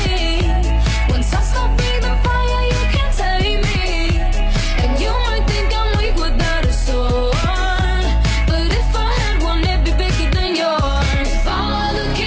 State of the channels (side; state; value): both; identical; correlation 1.00